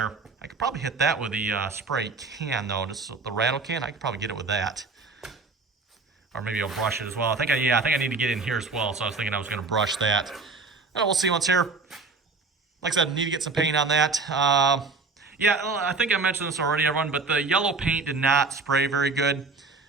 I could probably hit that with the spray can, though. Just the rattle can. I could probably get it with that. Or maybe I'll brush it as well. I think I need to get in here as well, so I was thinking I was going to brush that. And we'll see what's here. Like I said, I need to get some paint on that. Yeah, I think I mentioned this already, everyone, but the yellow paint did not spray very good.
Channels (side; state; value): left; quieter; 4.1 dB